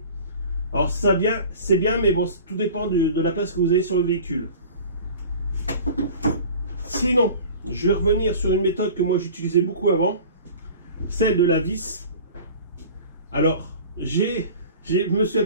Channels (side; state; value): both; inverted; correlation -0.41